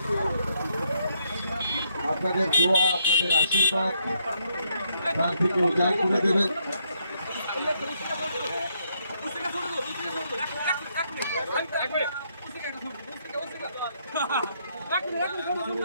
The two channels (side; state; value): both; inverted; correlation -0.73